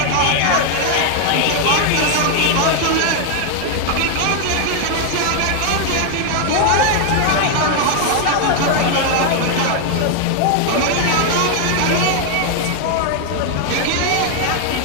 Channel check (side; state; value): both; different; correlation 0.00